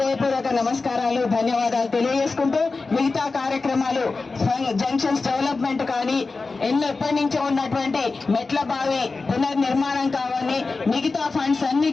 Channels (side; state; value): right; quieter; 3.9 dB